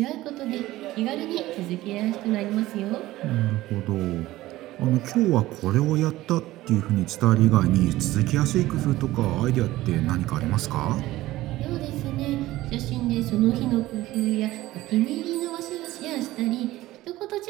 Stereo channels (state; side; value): quieter; left; 16.7 dB